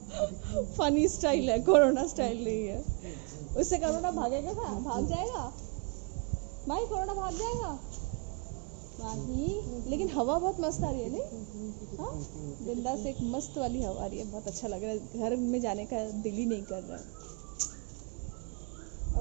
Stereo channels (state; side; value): quieter; left; 33.4 dB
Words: फनी स्टाइल है, कोरोना स्टाइल नहीं है। उससे कोरोना भागेगा क्या? भाग जाएगा भाई, कोरोना भाग जाएगा नहीं। लेकिन हवा बहुत मस्त आ रही है नहीं? हाँ विंडा से एक मस्त वाली हवा आ रही है, बहुत अच्छा लग रहा है। घर में जाने का दिल ही नहीं कर रहा है। और